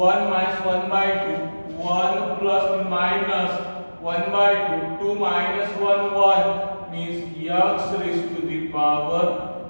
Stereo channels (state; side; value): inverted; both; correlation -1.00